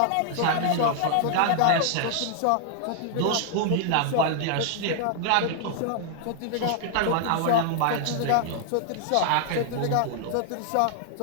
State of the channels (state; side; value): different; both; correlation 0.00